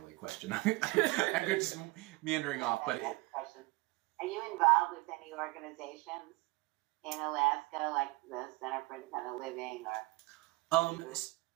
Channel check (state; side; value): quieter; left; 22.5 dB